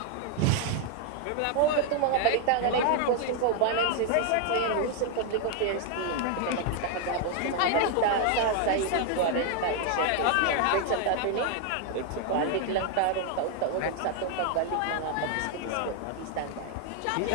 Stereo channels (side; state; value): both; different; correlation 0.00